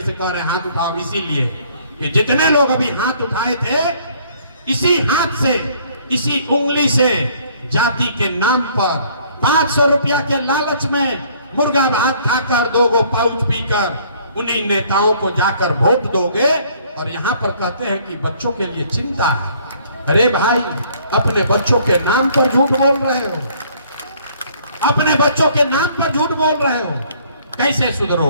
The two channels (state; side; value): inverted; both; correlation -0.60